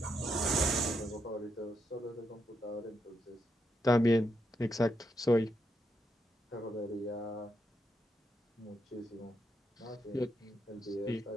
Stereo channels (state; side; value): normal; both; correlation 0.81